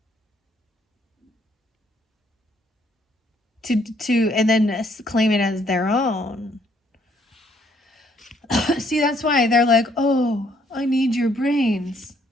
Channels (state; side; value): normal; both; correlation 0.67